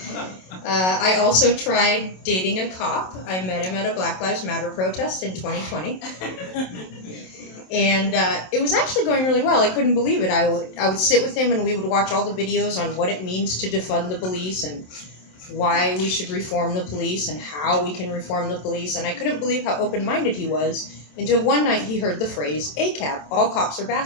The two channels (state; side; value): late; right; 27 ms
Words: I also tried dating a cop. I met him at a Black Lives Matter protest in 2020. And it was actually going really well. I couldn't believe it. I would sit with him and we would watch all the videos on what it means to defund the police and why we should reform the police and how we can reform the police. And I couldn't believe how open-minded he was until one night he heard the phrase, ACAB, all cops are